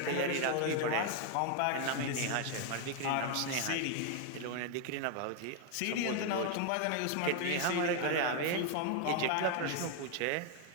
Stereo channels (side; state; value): both; different; correlation 0.01